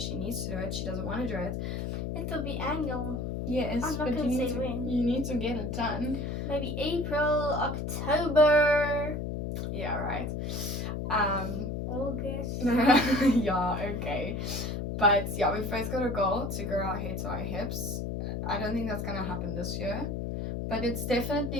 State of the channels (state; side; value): noise; left; hum, 3 dB below the sound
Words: needs to do it. She doesn't want to do it. It'll be annual. Yes, I'm not but gonna say when. You need to get it done. Maybe April, October. Yeah, right. August. Yeah, okay. But yeah, we've both got a goal to grow our hair to our hips. I don't think that's gonna happen this year, but it's